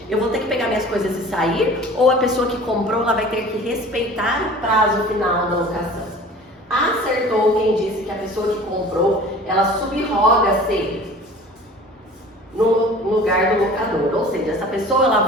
Eu vou ter que pegar minhas coisas e sair, ou a pessoa que comprou, ela vai ter que respeitar o prazo final da locação? Acertou quem disse que a pessoa que comprou, ela subroga-se no lugar do locador, ou seja, essa pessoa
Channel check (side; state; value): both; normal; correlation 0.43